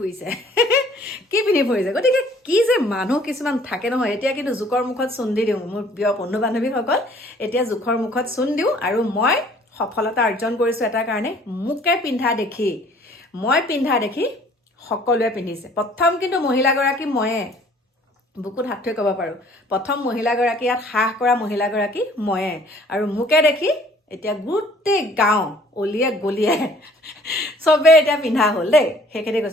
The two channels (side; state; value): both; normal; correlation 0.56